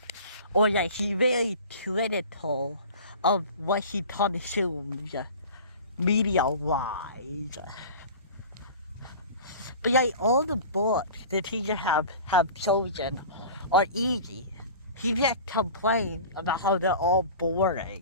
Or like, he's very critical of what he consumes media-wise. But like, all the books the teachers have chosen are easy. He just complains about how they're all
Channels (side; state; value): both; inverted; correlation -0.38